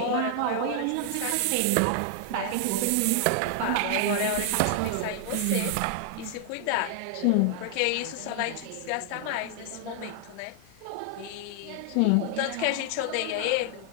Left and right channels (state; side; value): different; both; correlation 0.00